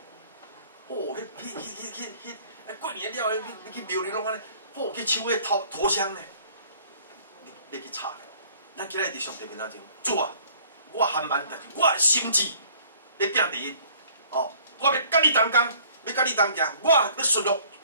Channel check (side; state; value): both; inverted; correlation -0.56